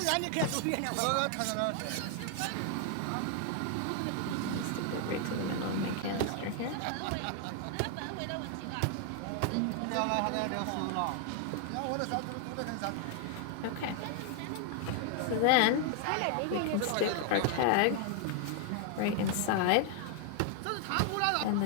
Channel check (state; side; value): different; both; correlation 0.00